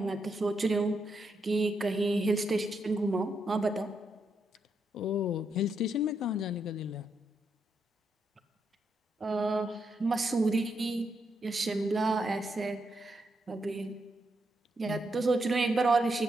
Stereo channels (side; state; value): both; normal; correlation 0.81